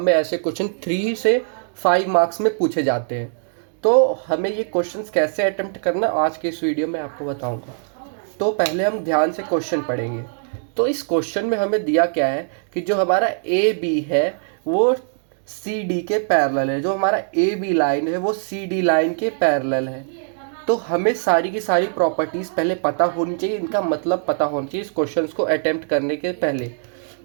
में ऐसे क्वेश्चन 3 से 5 मार्क्स में पूछे जाते हैं। तो हमें ये क्वेश्चंस कैसे अटेम्प्ट करना आज के इस वीडियो में आपको बताऊंगा। तो पहले हम ध्यान से क्वेश्चन पढ़ेंगे। तो इस क्वेश्चन में हमें दिया क्या है कि जो हमारा ए बी है वो सी डी के पैरेलल है। जो हमारा ए बी लाइन है वो सी डी लाइन के पैरेलल है। तो हमें सारी की सारी प्रॉपर्टीज़ पहले पता होनी चाहिए, इनका मतलब पता होना चाहिए इस क्वेश्चन को अटेम्प्ट करने के पहले।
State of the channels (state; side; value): silent; left; digital silence